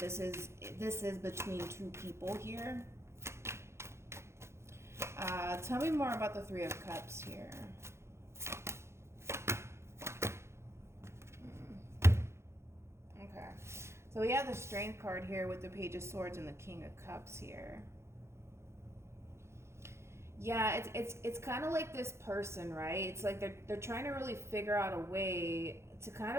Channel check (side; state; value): left; late; 0.13 ms